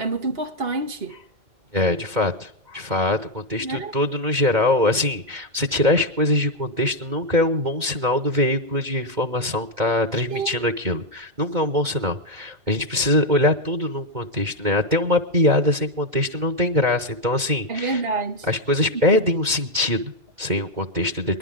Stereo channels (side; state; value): left; late; 2.1 ms